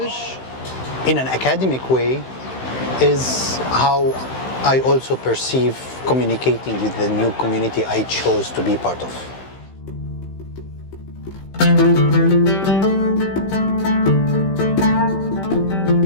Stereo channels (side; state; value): right; late; 15 ms